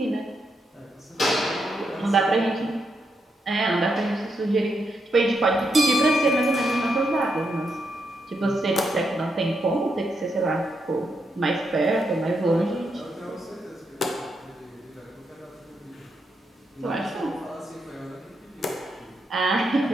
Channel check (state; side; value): normal; both; correlation 0.81